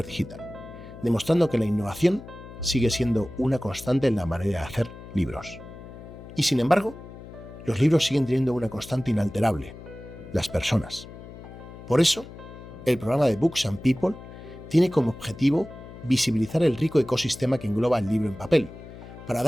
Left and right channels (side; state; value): left; noise; hum, 15 dB below the sound